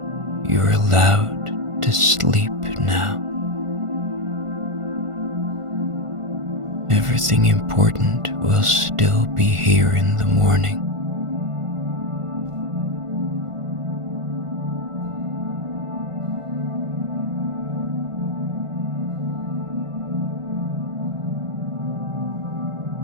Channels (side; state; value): left; late; 1.5 ms